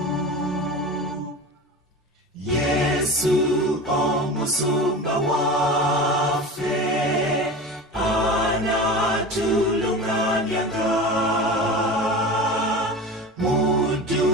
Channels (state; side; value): normal; both; correlation 0.31